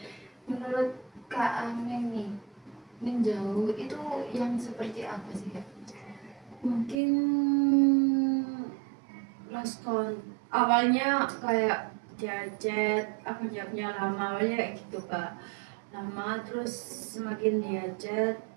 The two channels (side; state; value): left; drops out; at 7.0 s